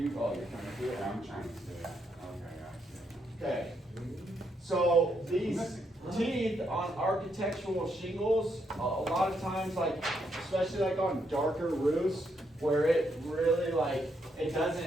You're trying to do it. Yeah, I'm trying to see it. Okay, Okay. So these teeth on architectural shingles, a lot of times, like, especially like on darker roofs, where it really like, it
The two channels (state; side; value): normal; both; correlation 0.77